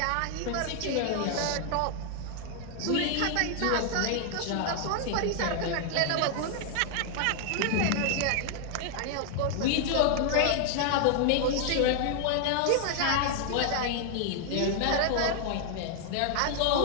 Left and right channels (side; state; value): both; different; correlation 0.00